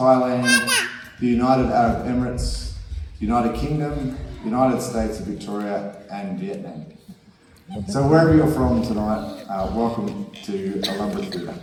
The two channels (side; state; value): both; identical; correlation 1.00